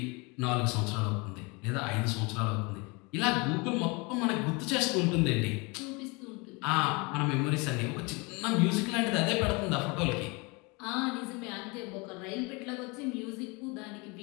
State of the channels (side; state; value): right; quieter; 28.1 dB